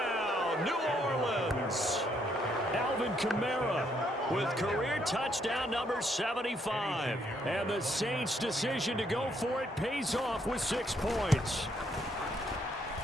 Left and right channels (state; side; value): normal; both; correlation 0.72